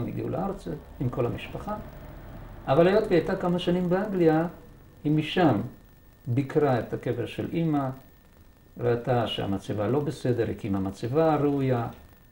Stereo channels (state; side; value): identical; both; correlation 1.00